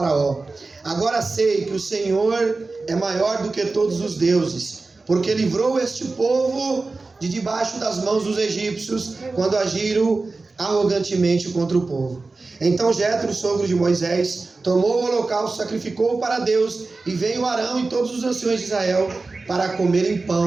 Agora sei que o Senhor é maior do que todos os deuses, porque livrou este povo de debaixo das mãos dos egípcios, quando agiram arrogantemente contra o povo. Então Jetro, sogro de Moisés, tomou o holocausto, sacrificou-o para Deus, e veio Arão e todos os anciões de Israel para comerem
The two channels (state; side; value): quieter; left; 3.7 dB